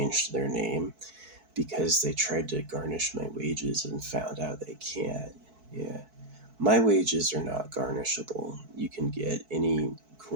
their name because they tried to garnish my wages and found out they can't. Yeah. My wages are not garnishable. You can get any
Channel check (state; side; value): late; left; 4.6 ms